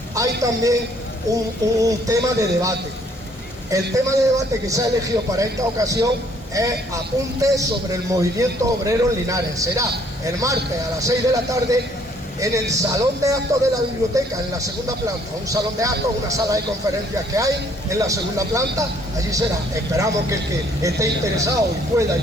hay también un tema de debate. El tema de debate que se ha elegido para esta ocasión es apuntes sobre el movimiento obrero en Linares. Será el martes a las 6 de la tarde en el salón de actos de la biblioteca, en la segunda planta. Un salón de actos, una sala de conferencias que hay en la segunda planta. Allí será. Esperamos que el que esté interesado y pueda y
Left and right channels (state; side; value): normal; both; correlation 0.63